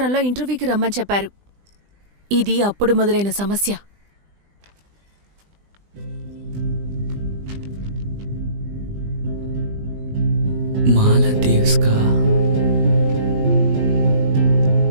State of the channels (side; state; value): left; late; 20 ms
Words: ఇంటర్వ్యూకి రమ్మని చెప్పారు. ఇది అప్పుడు మొదలైన సమస్య. మాలదీవ్స్కా?